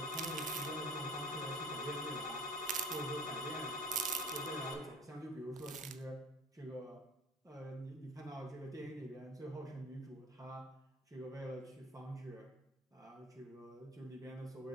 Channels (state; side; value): normal; both; correlation 0.43